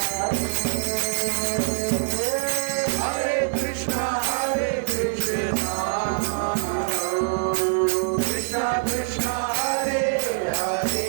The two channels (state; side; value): silent; left; digital silence